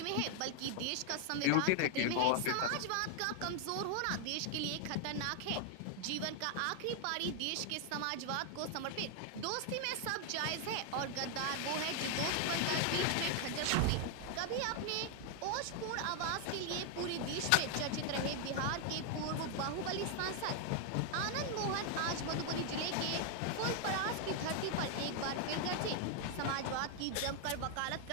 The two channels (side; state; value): both; different; correlation 0.00